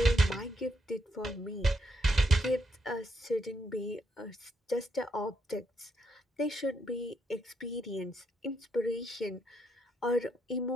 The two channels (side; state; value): both; normal; correlation 0.77